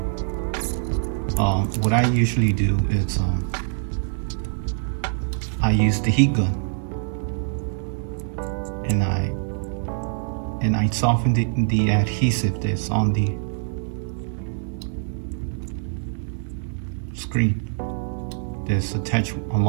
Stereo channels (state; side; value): silent; left; 62 dB below the other